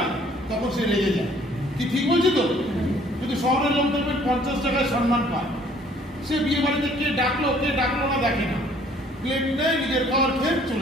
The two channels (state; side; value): normal; both; correlation 0.58